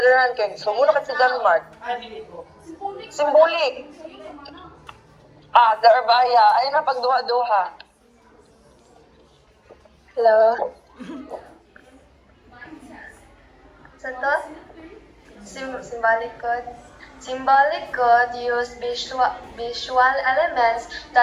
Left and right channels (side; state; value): both; identical; correlation 1.00